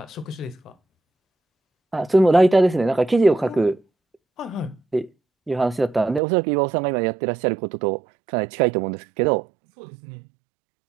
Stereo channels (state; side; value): drops out; left; at 6.2 s